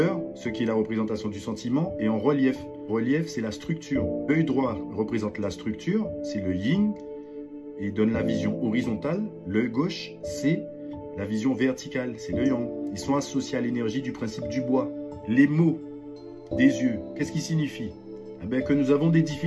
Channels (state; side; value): identical; both; correlation 1.00